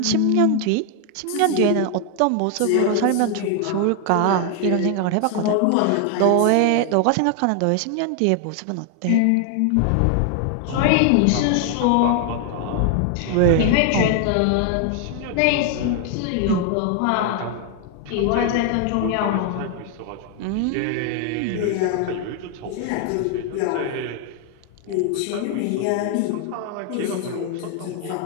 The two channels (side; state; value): both; different; correlation 0.00